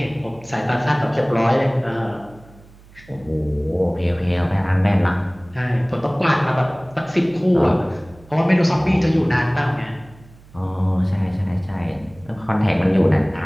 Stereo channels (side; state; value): right; noise; hum, 24 dB below the sound